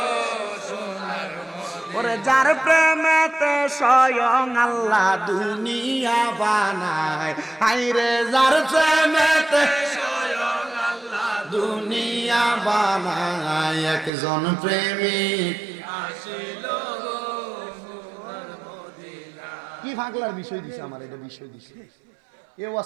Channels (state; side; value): drops out; left; at 14.1 s